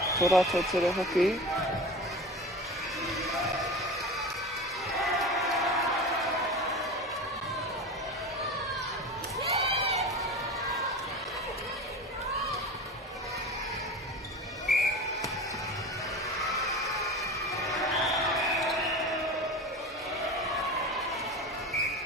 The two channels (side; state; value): both; normal; correlation 0.31